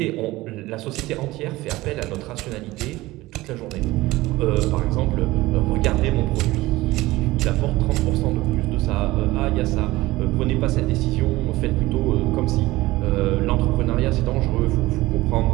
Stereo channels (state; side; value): quieter; left; 18.7 dB